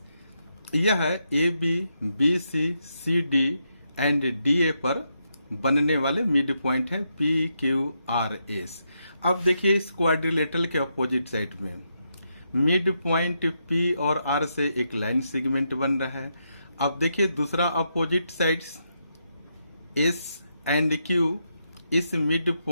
यह ABBCD एंड DA पर बनने वाले मिड पॉइंट है PQRS। अब देखिए इस क्वाड्रिलेटरल के अपोजिट साइड में मिड पॉइंट P और R से एक लाइन सेगमेंट बन रहा है। अब देखिए दूसरा opposite sides S and Q, इस मिड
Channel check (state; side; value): inverted; both; correlation -0.82